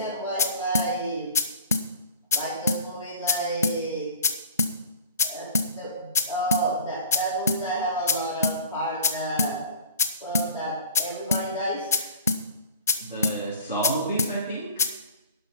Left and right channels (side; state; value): both; inverted; correlation -0.43